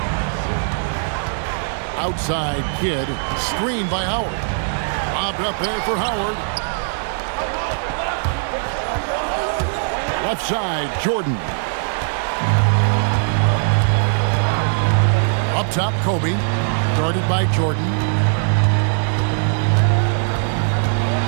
Outside Kidd. Screen by Howard. Lobbed up there for Howard. Left side, Jordan. Up top, Kobe. Guarded by Jordan.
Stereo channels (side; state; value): left; silent; digital silence